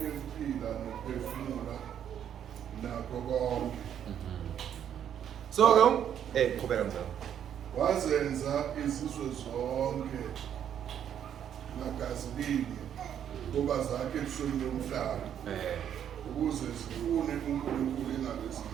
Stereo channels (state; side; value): quieter; left; 9.4 dB